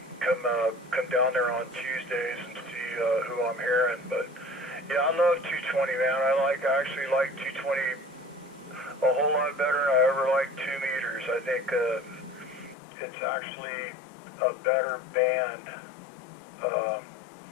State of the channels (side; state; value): right; drops out; at 12.8 s